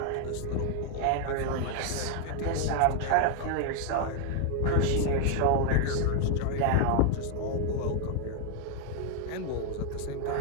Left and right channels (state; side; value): different; both; correlation 0.00